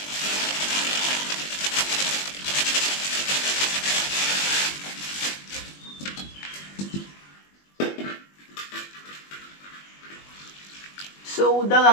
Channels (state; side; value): late; right; 21 ms